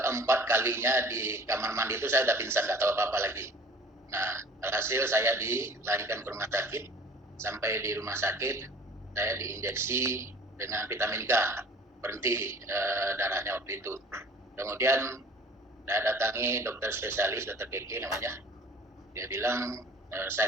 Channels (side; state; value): both; normal; correlation 0.48